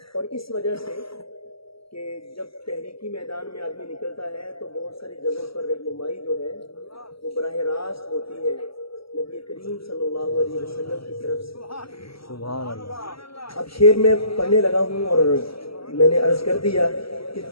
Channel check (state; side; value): late; right; 0.75 ms